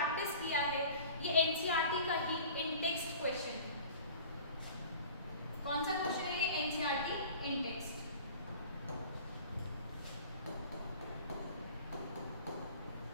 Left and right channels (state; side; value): inverted; both; correlation -0.43